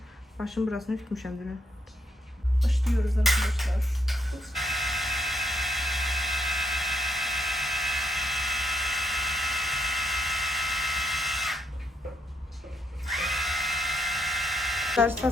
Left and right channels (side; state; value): both; normal; correlation 0.75